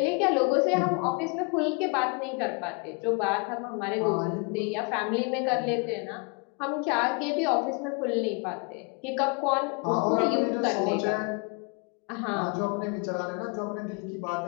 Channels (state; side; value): quieter; right; 33.2 dB